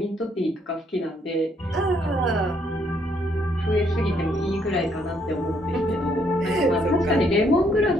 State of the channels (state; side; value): normal; both; correlation 0.70